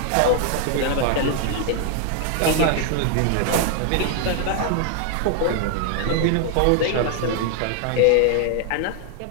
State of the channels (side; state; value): both; different; correlation 0.00